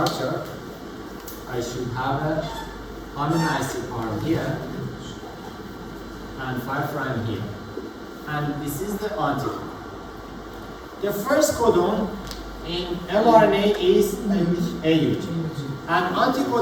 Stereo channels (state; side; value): identical; both; correlation 1.00